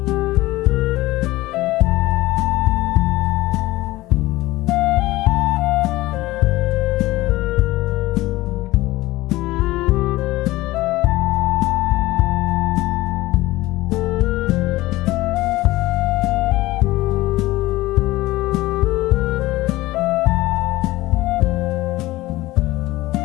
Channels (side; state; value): right; quieter; 18.4 dB